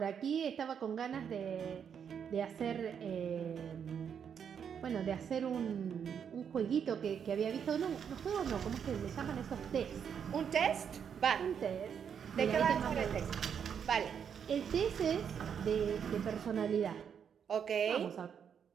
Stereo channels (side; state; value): left; quieter; 7.6 dB